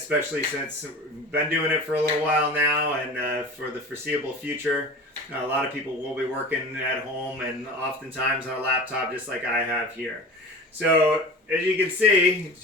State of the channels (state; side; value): normal; both; correlation 0.35